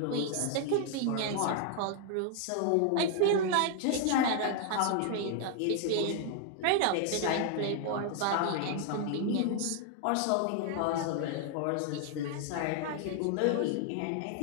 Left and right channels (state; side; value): different; both; correlation 0.00